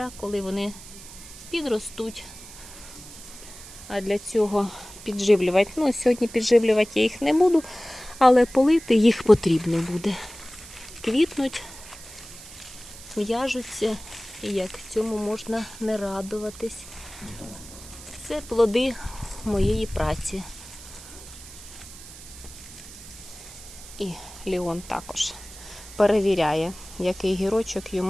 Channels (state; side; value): noise; right; hiss, 16 dB below the sound